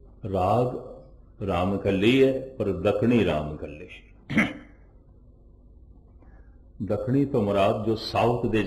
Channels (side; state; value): both; identical; correlation 1.00